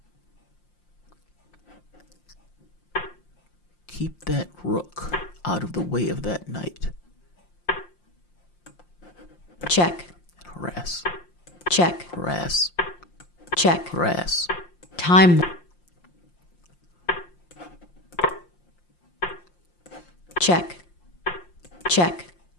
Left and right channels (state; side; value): late; right; 5.7 ms